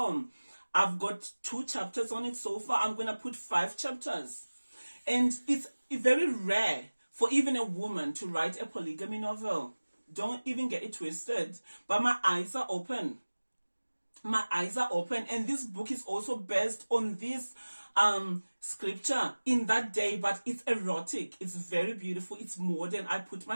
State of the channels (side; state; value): both; inverted; correlation -1.00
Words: I've got 2 chapters on it so far. I'm going to put 5 chapters. And it's very rare for even a woman to write a polygamy novel. Don't even get it twisted. But my eyes are open. My eyes are open. And this book is also based on this scripture in that day, but it's erotic. It's very beautiful. It's modern. I put my